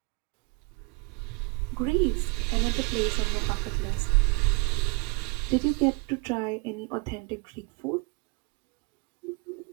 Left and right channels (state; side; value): quieter; left; 28.6 dB